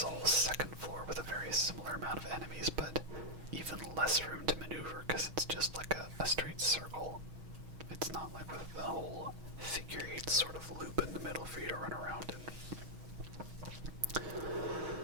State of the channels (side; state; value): left; late; 6.3 ms